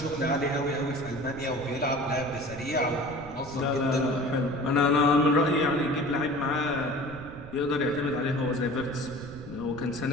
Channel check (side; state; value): right; noise; rumble, 15 dB below the sound